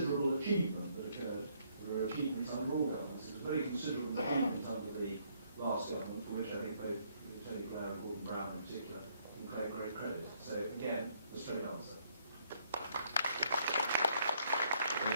achievement that occurred. There were achievements under all governments. It was a very considerable achievement under the last government, for which I think both Tony Blair and Gordon Brown in particular can claim great credit. So again, a straight answer.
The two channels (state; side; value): inverted; both; correlation -0.69